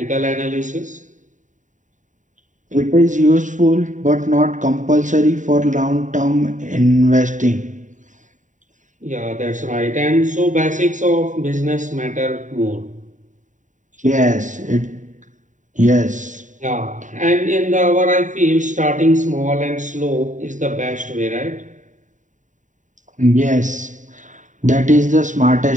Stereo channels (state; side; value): late; left; 0.36 ms